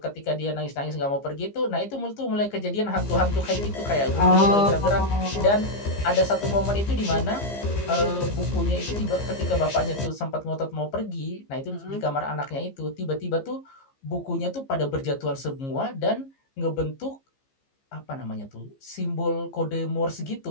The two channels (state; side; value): late; right; 15 ms